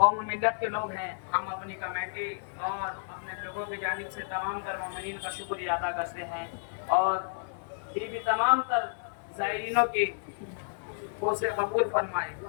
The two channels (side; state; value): right; silent; digital silence